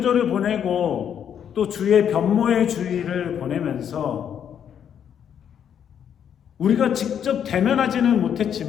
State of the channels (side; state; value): right; quieter; 8.7 dB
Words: 보내고 또 주의 변모의 주일을 보내면서 우리가 직접 대면하지는